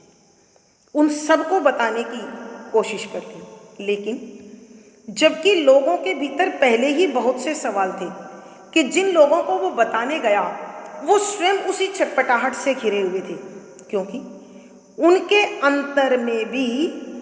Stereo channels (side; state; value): both; identical; correlation 1.00